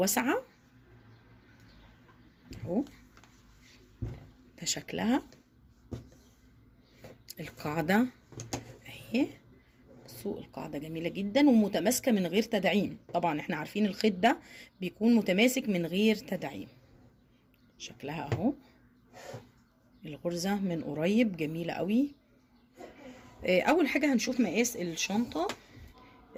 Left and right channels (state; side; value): identical; both; correlation 1.00